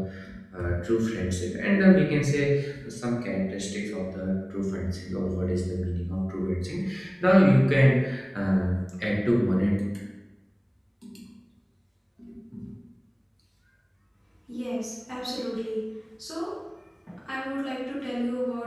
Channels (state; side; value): identical; both; correlation 1.00